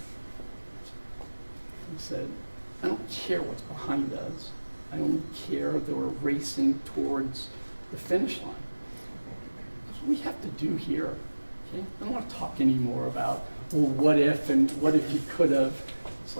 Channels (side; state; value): both; inverted; correlation -1.00